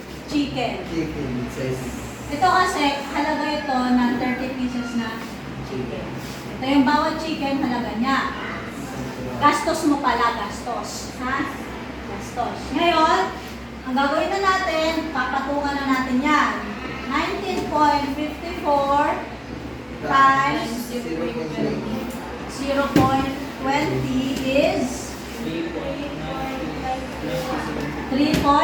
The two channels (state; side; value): identical; both; correlation 1.00